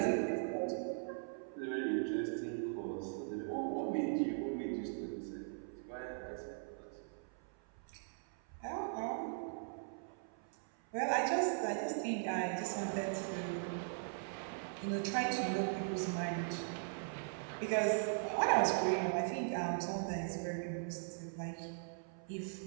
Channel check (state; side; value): silent; left; 51 dB below the other